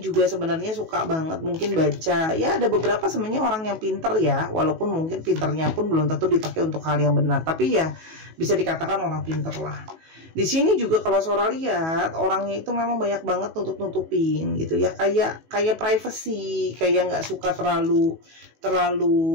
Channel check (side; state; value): left; late; 18 ms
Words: sebenarnya suka banget mungkin baca. Ya, ada beberapa sebenarnya orang yang pinter ya, walaupun mungkin pinternya pun belum tentu dipakai untuk hal yang benar, tapi ya bisa dikatakan orang pinter lah. Di sini juga kalau Sora lihat orangnya itu memang banyak banget nutup-nutupin gitu ya, kayak privacy, kayak nggak suka